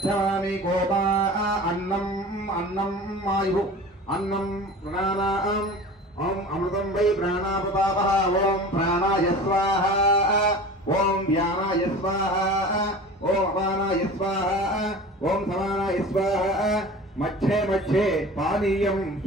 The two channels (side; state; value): both; normal; correlation 0.38